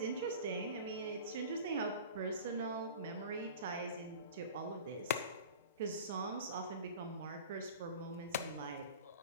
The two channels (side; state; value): both; inverted; correlation -0.38